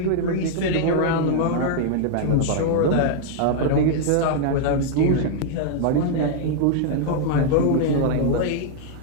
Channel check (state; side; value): different; both; correlation -0.01